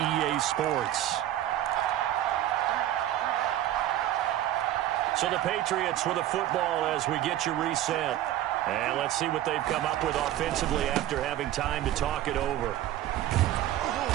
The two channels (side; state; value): left; quieter; 13.1 dB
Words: Sports. So the Patriots with the football as we get you reset. And let's see what they've come up with offensively after having time to talk it over.